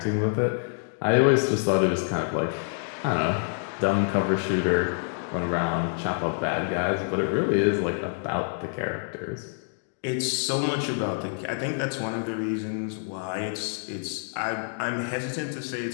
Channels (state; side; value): silent; right; digital silence